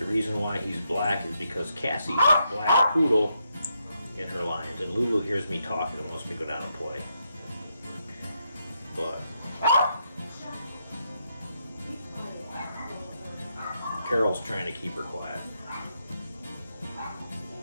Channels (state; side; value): inverted; both; correlation -0.81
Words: reason why he's black is because Cassie's a black poodle in her lines, and Lulu hears me talking and wants me to go down and play. But Carol's trying to keep her quiet.